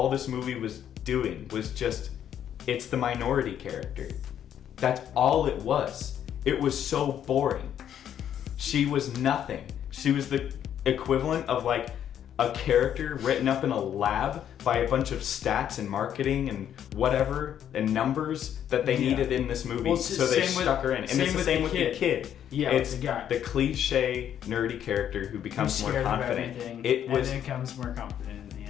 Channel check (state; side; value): quieter; right; 9.8 dB